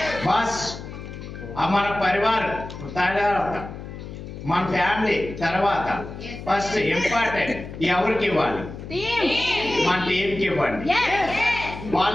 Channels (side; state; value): left; noise; hum, 11 dB below the sound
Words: బస్ మన పరివార్ తర్వాత మన ఫ్యామిలీ తర్వాత ఫస్ట్ ఇంపార్టెంట్ ఎవరికి ఇవ్వాలి? మన టీంకి ఇవ్వండి।